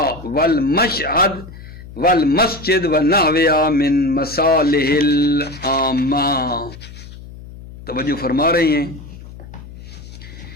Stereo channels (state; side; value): noise; left; hum, 16 dB below the sound